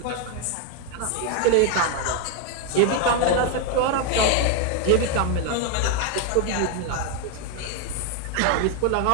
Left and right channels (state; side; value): different; both; correlation 0.01